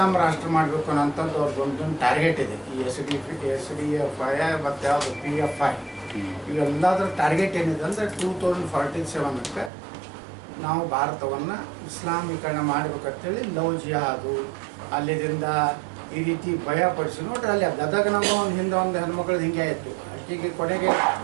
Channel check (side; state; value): left; drops out; at 9.7 s